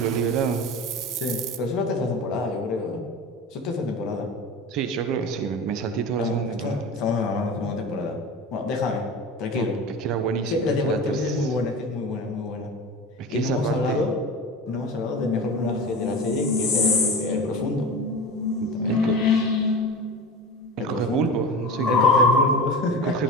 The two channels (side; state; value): both; normal; correlation 0.31